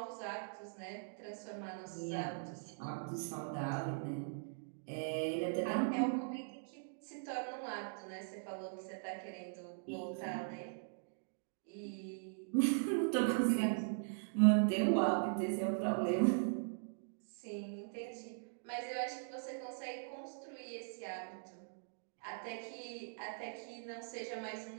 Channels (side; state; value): left; silent; digital silence